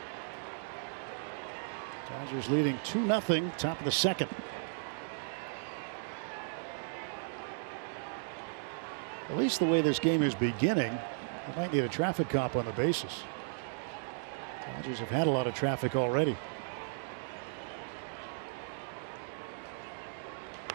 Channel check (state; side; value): silent; left; digital silence